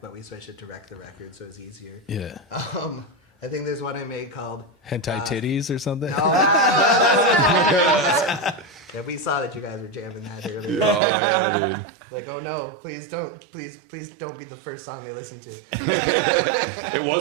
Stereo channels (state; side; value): drops out; left; at 11.0 s